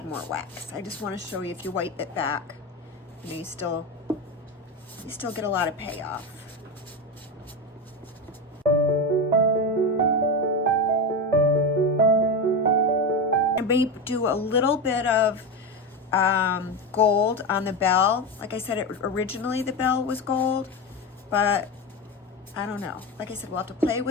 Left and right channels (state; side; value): normal; both; correlation 0.17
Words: more wax. I just want to show you, if you wipe it back, you know, you still get a lot of payoff. I may do a little bit of gold on the bell. Like I said, originally the bell was gold, but I don't know. Like I said, we'll have to play